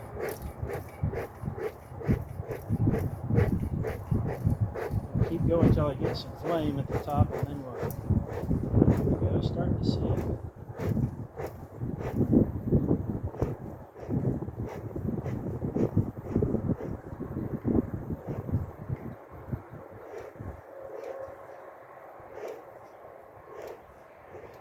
Keep going until I get some flame at the top, and then we'll start to see it.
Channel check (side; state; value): both; identical; correlation 1.00